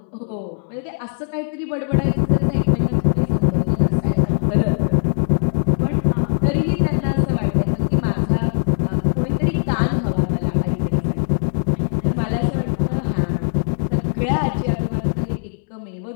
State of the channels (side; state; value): right; silent; 66 dB below the other